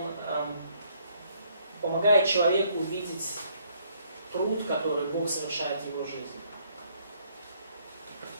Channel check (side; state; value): both; inverted; correlation -0.67